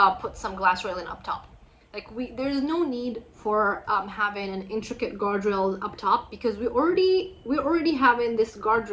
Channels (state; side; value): identical; both; correlation 1.00